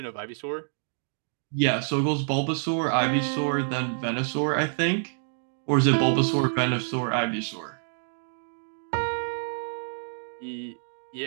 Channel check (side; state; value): left; silent; digital silence